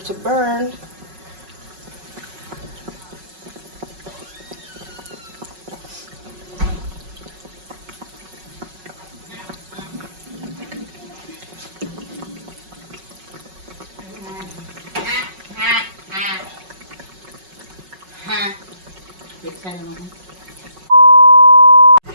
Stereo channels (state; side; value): late; left; 5.4 ms